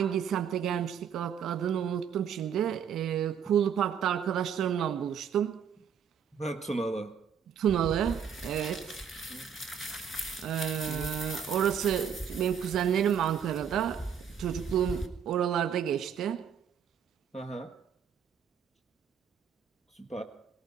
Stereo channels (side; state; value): left; quieter; 7.9 dB